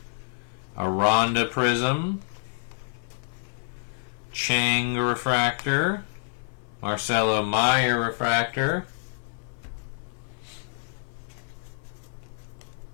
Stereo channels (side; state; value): right; silent; 60 dB below the other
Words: Aranda Prism, Chang refractor, Marcelo Meyer refractor,